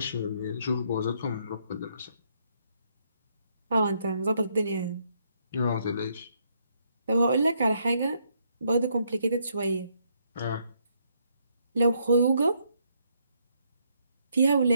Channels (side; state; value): both; inverted; correlation -0.73